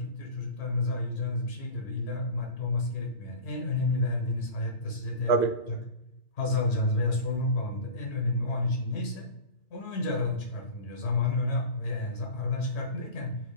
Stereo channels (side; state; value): right; late; 3.1 ms